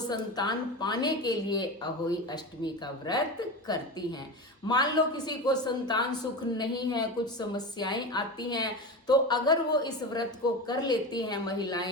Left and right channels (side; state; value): both; normal; correlation 0.24